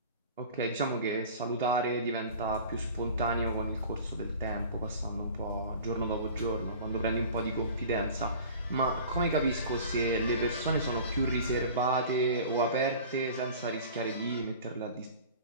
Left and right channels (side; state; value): both; inverted; correlation -0.41